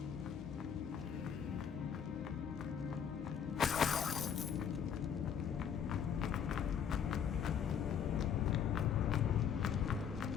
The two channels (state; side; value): quieter; right; 7.9 dB